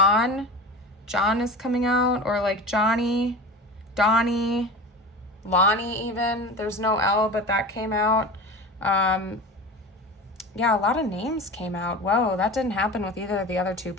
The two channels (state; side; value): normal; both; correlation 0.32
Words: is coming out, or like Johnny, Donnie, Lonnie even. There's no L, but that came out. Yeah, a lot of names came out. Whoa, that didn't happen with either of the other 2